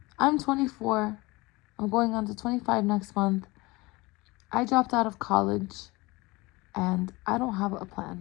I'm 24. I'm going on to 25 next month. I dropped out of college, and I don't have a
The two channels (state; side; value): quieter; right; 22.8 dB